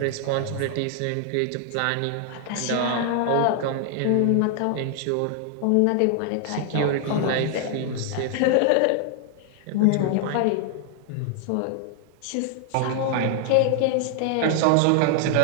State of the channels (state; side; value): different; both; correlation 0.00